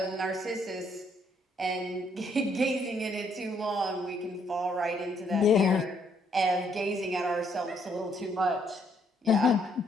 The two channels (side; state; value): both; normal; correlation 0.70